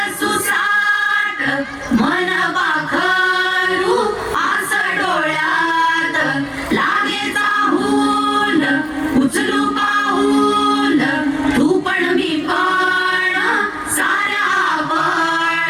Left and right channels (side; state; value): both; identical; correlation 1.00